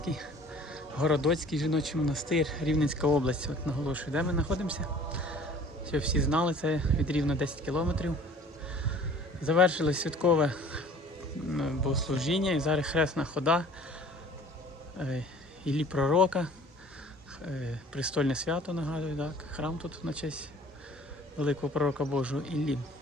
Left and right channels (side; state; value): both; normal; correlation 0.50